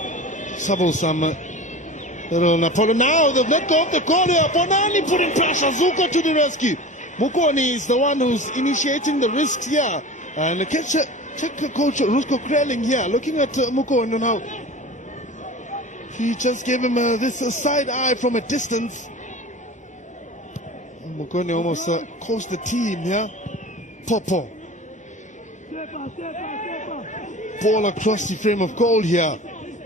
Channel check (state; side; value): normal; both; correlation 0.35